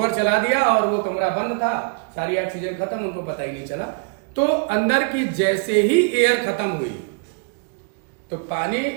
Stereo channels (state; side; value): quieter; left; 35.6 dB